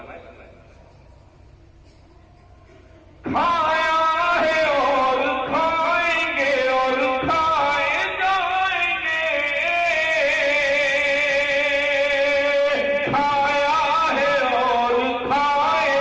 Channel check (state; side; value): identical; both; correlation 1.00